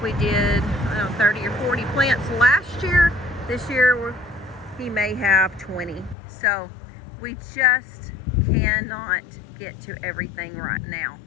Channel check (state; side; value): drops out; right; at 6.2 s